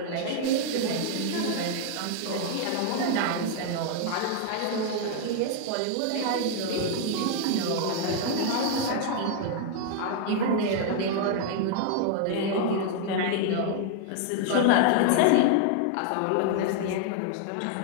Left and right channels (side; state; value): both; different; correlation 0.00